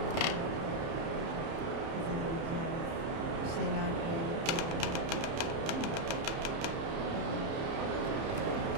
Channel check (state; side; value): late; left; 30 ms